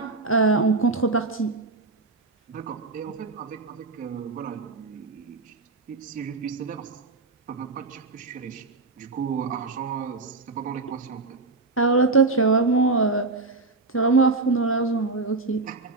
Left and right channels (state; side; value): quieter; left; 3.7 dB